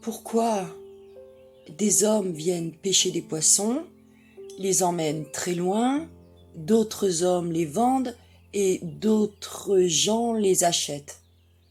pourquoi des hommes viennent pêcher des poissons, les emmènent très loin, d'autres hommes les vendent et d'autres gens les achètent.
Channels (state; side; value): identical; both; correlation 1.00